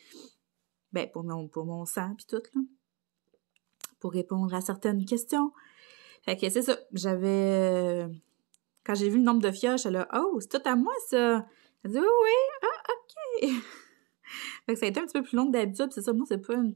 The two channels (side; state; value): left; quieter; 24.8 dB